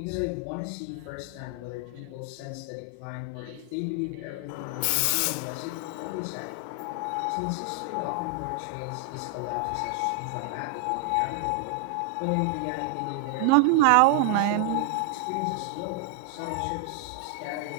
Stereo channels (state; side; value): different; both; correlation 0.00